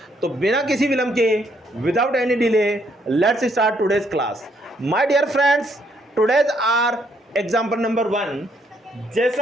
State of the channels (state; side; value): normal; both; correlation 0.71